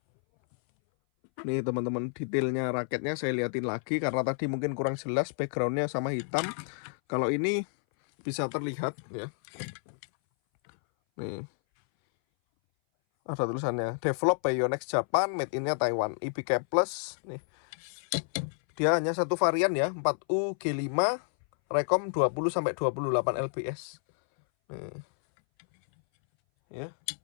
Nih teman-teman, detailnya raketnya saya liatin lagi karena tadi mungkin kurang jelas backgroundnya sama hitam. Kalau ini bisa terlihat ya. Nih ada tulisannya develop by Yonex Japan, made in-nya Taiwan, IBK Plus. Nih dia hanya satu varian ya, 4U G5 rekom 20 sampai 28 lbs. Nih ya,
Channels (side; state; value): right; silent; 58 dB below the other